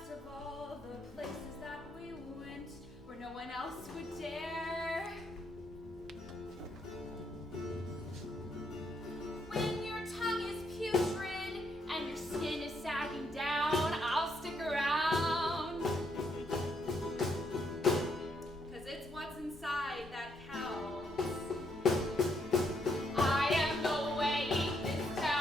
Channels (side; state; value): both; normal; correlation 0.75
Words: of all the places that we went where no one else would dare. When your tongue is putrid and your skin is sagging down, I'll stick around. 'Cause it's what's inside that counts. I am the weight this